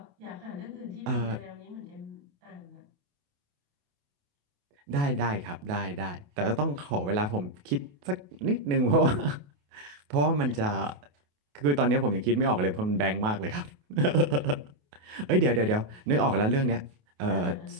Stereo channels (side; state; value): left; late; 28 ms